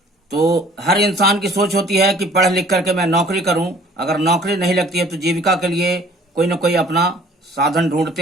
तो हर इंसान की सोच होती है कि पढ़ लिख करके मैं नौकरी करूं। अगर नौकरी नहीं लगती है तो जीविका के लिए कोई न कोई अपना साधन ढूंढते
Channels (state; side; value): normal; both; correlation 0.54